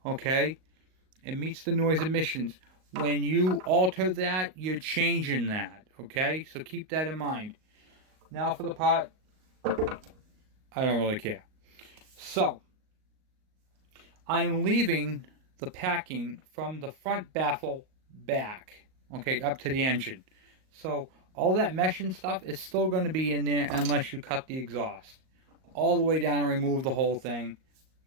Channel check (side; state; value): left; late; 38 ms